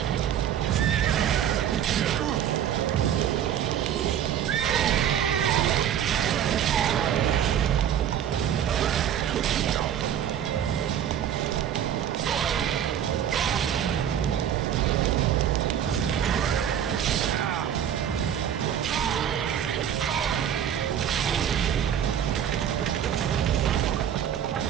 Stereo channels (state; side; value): quieter; left; 9.7 dB